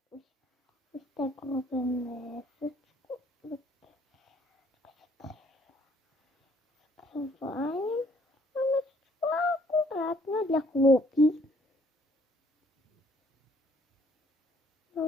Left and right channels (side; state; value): both; normal; correlation 0.63